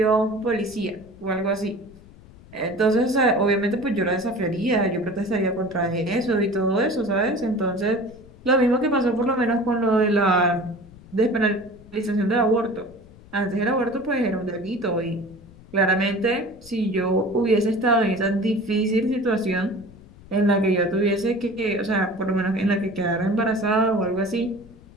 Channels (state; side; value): noise; left; rumble, 22 dB below the sound